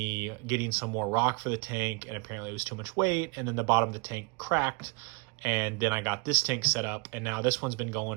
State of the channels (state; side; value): quieter; left; 29.5 dB